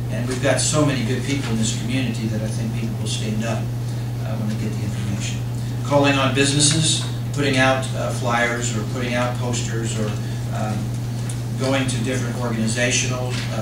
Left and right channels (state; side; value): identical; both; correlation 1.00